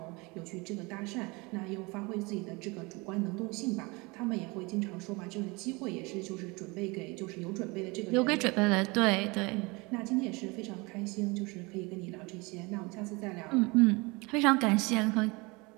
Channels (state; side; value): quieter; left; 26.1 dB